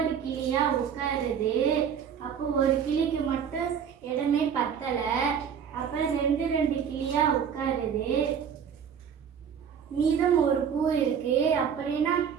கிளியா உட்காருது. அப்போ ஒரு கிளிக்கு மட்டும் இடமே பத்தலை. அப்புறம் ரெண்டு கிளியா உட்காருது. மீதம் ஒரு பூ இருக்கு. அப்படின்னா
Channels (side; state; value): left; quieter; 7.7 dB